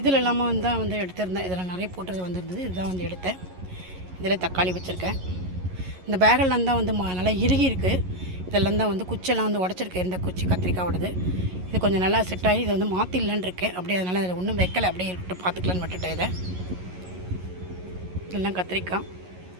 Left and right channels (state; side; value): late; left; 11 ms